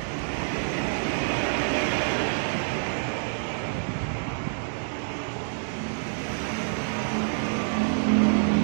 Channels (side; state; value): left; silent; digital silence